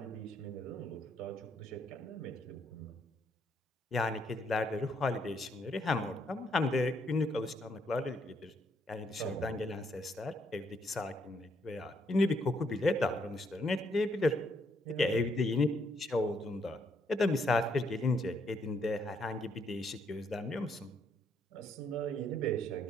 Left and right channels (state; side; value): normal; both; correlation 0.73